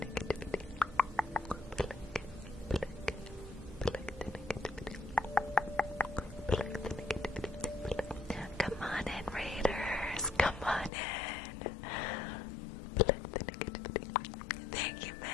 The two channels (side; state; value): right; drops out; at 10.9 s